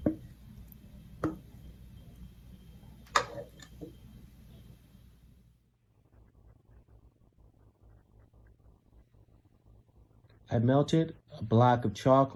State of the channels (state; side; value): identical; both; correlation 1.00